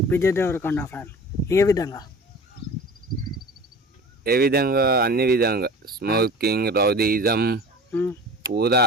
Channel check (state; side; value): normal; both; correlation 0.39